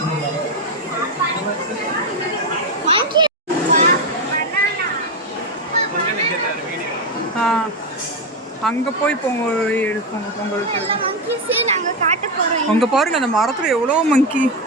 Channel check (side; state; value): both; normal; correlation 0.09